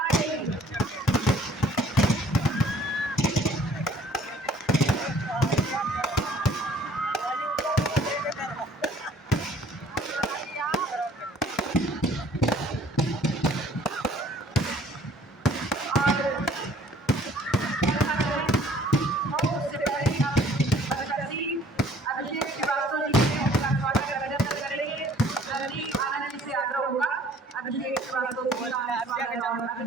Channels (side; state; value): both; normal; correlation 0.56